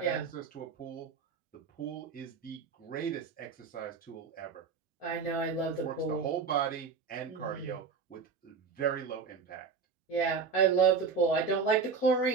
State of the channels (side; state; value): left; quieter; 5.3 dB